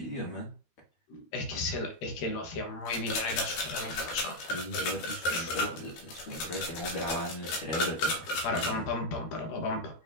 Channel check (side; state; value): right; late; 13 ms